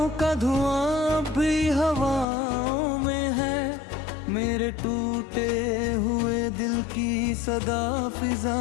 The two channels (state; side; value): drops out; right; at 2.2 s